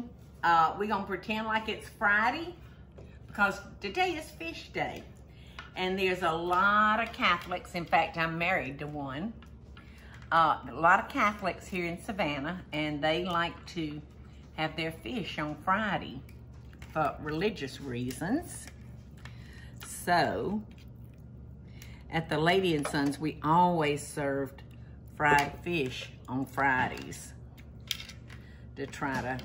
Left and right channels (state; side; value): identical; both; correlation 1.00